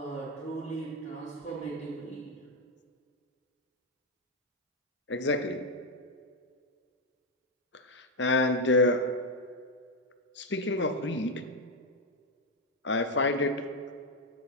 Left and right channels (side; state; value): both; normal; correlation 0.03